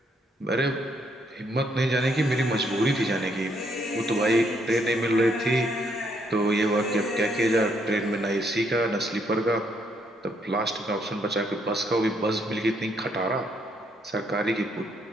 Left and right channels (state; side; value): normal; both; correlation 0.72